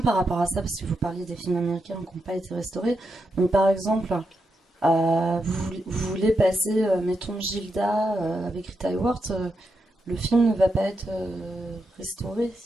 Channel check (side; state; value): both; normal; correlation 0.85